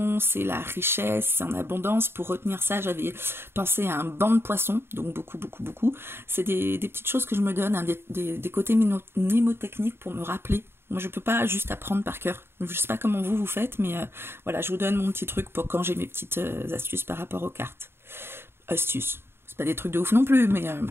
c'est la richesse, c'est en abondance. Pour retenir ça, j'avais pensé à un banc de poissons, donc beaucoup, beaucoup, beaucoup. C'est des petites choses que je me donne, hein, des côtés mnémotechniques pour me rappeler. Moi, je peux pas juste apprendre par cœur. Je sais pas comment vous faites, mais voilà, je vous donne mon petit truc pour quand j'ai mes petites astuces par rapport aux cartes. Astuces, c'est pas des trucs de ouf non plus, mais...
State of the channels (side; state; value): left; late; 0.11 ms